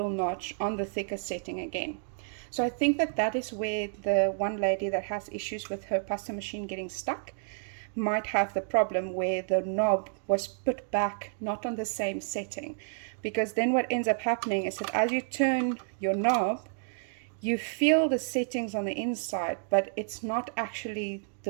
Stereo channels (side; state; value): left; silent; digital silence